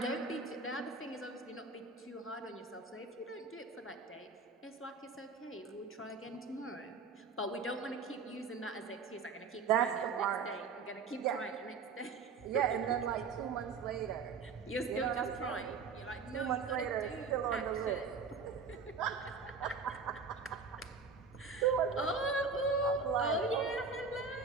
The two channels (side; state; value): left; quieter; 5.0 dB